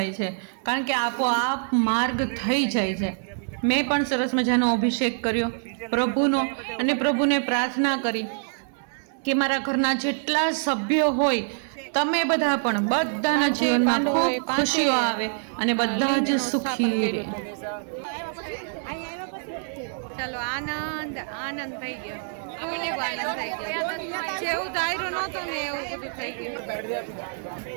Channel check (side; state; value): left; silent; digital silence